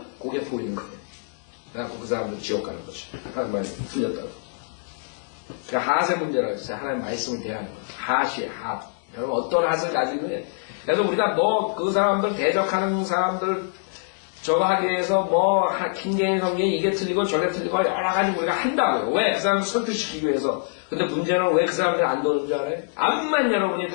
그게 보이는 거예요. 그래갖고 그 사람들은 지옥 가는 거죠. 하나님 말씀이 틀렸다고. 그러니까 핫의 문제라고 했어요. 하나님 말씀을 대하는 거예요. 핫이에요. 핫. 여러분 어떤 핫을 가지고 있느냐. 그래서 우리가 그 사람들 대적하는 사람들 저거 하기 위해서 킹게임 성경이 이게 틀리고 저게 틀리고 여러 가지 우리가 한다고요. 왜? 그 사람을 설득시키기 위해서. 근데 문제는 왜 그 사람들이 안 도는 줄 알아요? 암만 여러분이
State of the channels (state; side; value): silent; right; digital silence